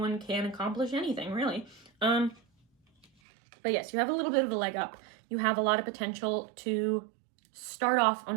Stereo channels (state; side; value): drops out; left; at 3.1 s